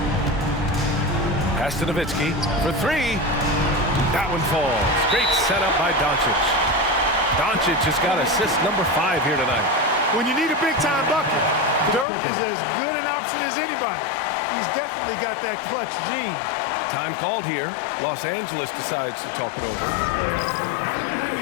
Pass to Nowitzki for three. That one falls. Great setup by Doncic. Doncic has got assist number 5 here tonight. When you need a big-time bucket, Dirk is as good an option as anybody. He's definitely got that clutch gene. Time called here. Los Angeles decides to talk it over.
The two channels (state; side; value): drops out; right; at 12.1 s